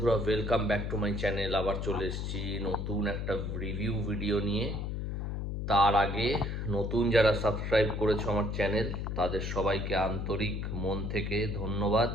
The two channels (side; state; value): left; noise; hum, 3 dB below the sound